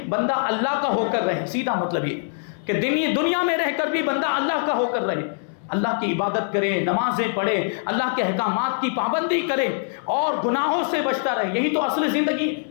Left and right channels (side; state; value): right; silent; 57 dB below the other